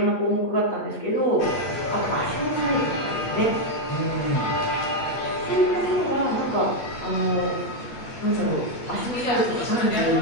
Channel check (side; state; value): right; late; 8.5 ms